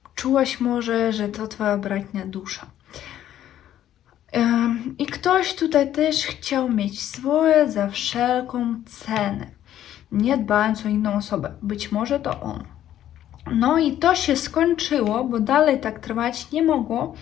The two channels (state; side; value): quieter; right; 11.7 dB